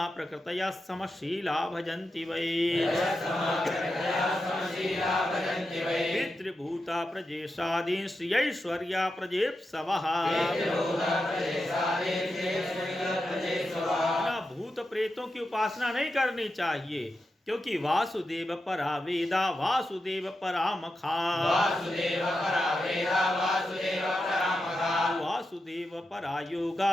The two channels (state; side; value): normal; both; correlation 0.89